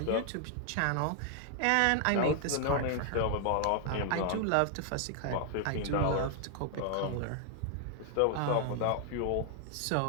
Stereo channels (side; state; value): both; different; correlation 0.00